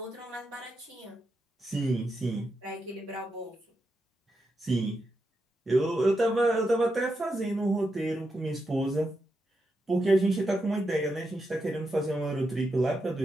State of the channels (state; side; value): normal; both; correlation 0.85